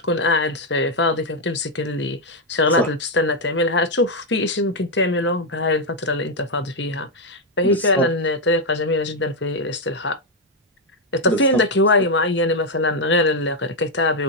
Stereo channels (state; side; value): normal; both; correlation 0.01